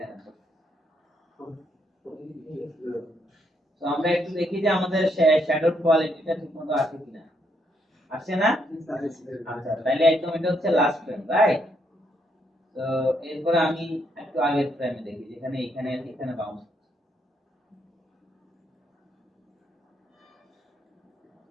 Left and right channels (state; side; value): normal; both; correlation 0.75